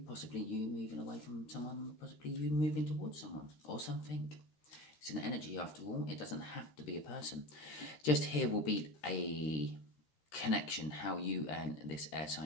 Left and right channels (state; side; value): late; right; 13 ms